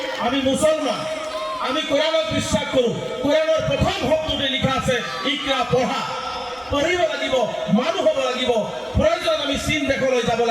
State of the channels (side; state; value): both; identical; correlation 1.00